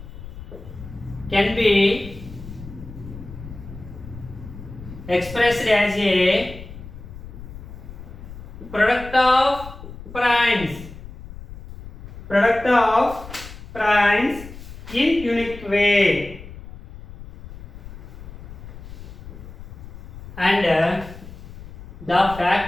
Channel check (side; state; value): left; noise; rumble, 14 dB below the sound